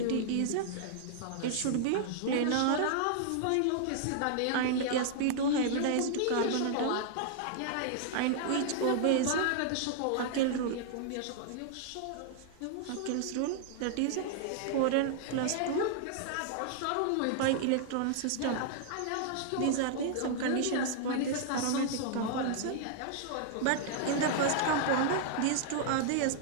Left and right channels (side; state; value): both; different; correlation -0.01